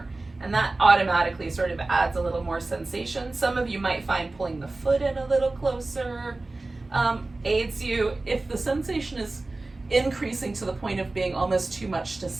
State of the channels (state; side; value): quieter; left; 3.2 dB